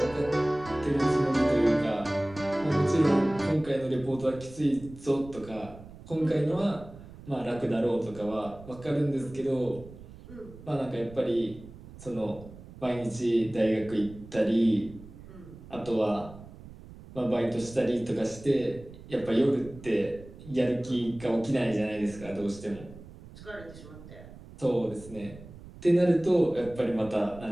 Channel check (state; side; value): noise; right; rumble, 17 dB below the sound